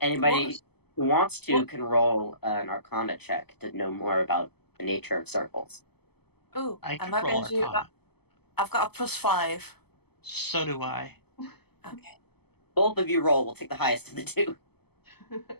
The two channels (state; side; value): late; right; 0.97 ms